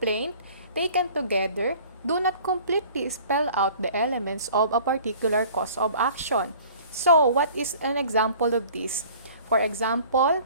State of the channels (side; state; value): both; inverted; correlation -0.48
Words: taken together do not completely spell out the elements of a particular cause of action. So what is an example of this? For example,